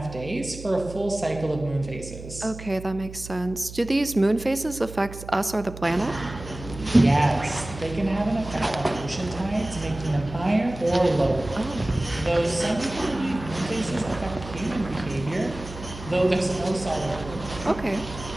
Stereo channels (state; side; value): noise; right; hum, 13 dB below the sound